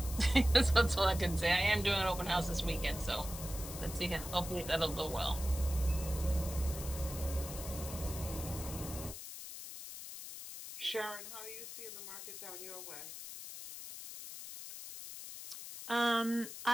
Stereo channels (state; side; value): noise; left; hiss, 10 dB below the sound